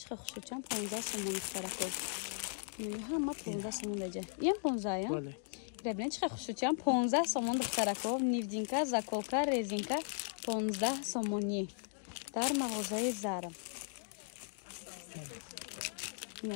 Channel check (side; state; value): right; silent; digital silence